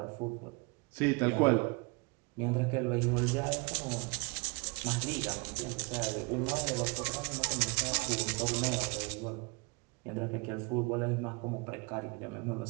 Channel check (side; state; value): left; quieter; 29.4 dB